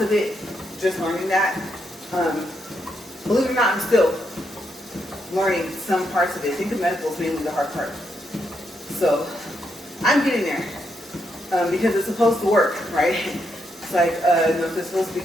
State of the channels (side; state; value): both; normal; correlation 0.79